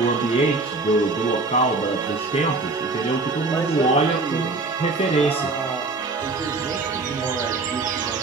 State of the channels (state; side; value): quieter; left; 3.5 dB